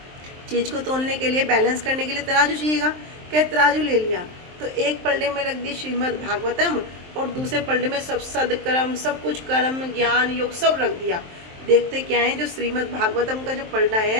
चीज़ को तोलने के लिए, बैलेंस करने के लिए तराजू चाहिएगा। क्या तराजू ले लिया, तो एक पलड़े में रख दी श्रीमद् भागवतम और दूसरे पलड़े में सब सदकर्म, सब कुछ कर्म, ज्ञान, योग सब रख दिया। देखते क्या है, जो श्रीमद् भागवतम का जो पलड़ा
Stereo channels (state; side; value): late; left; 23 ms